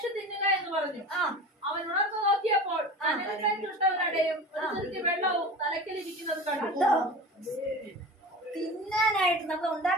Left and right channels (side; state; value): both; normal; correlation 0.33